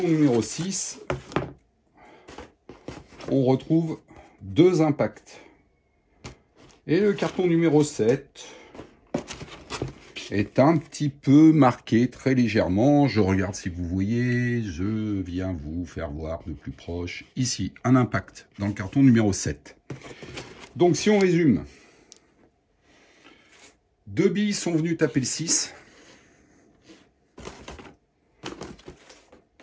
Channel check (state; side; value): identical; both; correlation 1.00